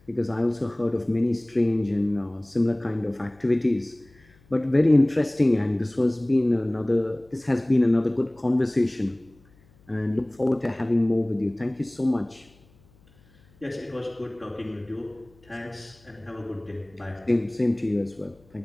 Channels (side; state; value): left; noise; hum, 30 dB below the sound